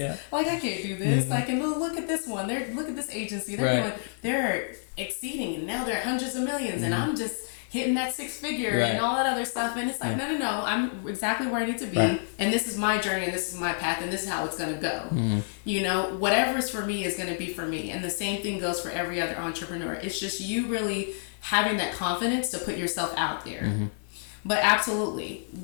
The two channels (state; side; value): silent; right; 57 dB below the other